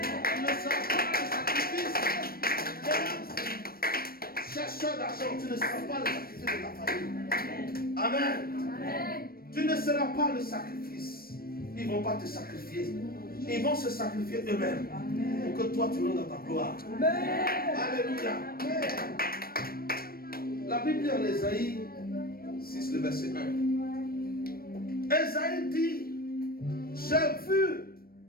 ne seras pas le sacrifice des chercheurs d'argent. Tu ne seras pas le sacrifice de ta famille. Amen. Tu ne seras pas le sacrifice. Ils ne vont pas te sacrifier. Ils vont se sacrifier eux-mêmes pour que toi tu rentres dans ta gloire. Alléluia. La Bible dit en Ésaïe 6, le verset 1. Ésaïe dit, j'ai vu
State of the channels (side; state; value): right; late; 0.44 ms